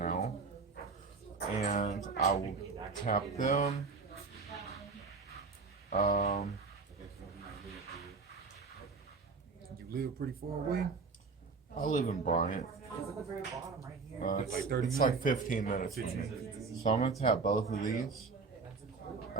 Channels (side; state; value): left; quieter; 4.5 dB